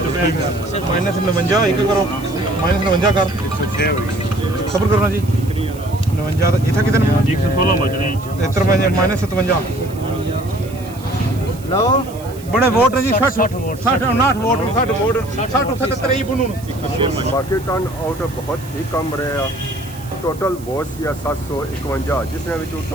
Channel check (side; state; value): right; noise; hiss, 20 dB below the sound